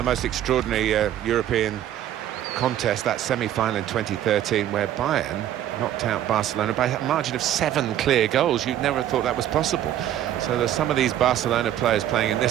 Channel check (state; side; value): quieter; left; 11.7 dB